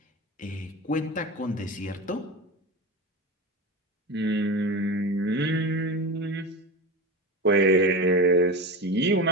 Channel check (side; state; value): both; normal; correlation 0.24